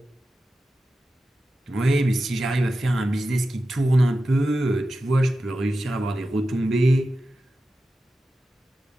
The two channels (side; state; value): both; normal; correlation 0.92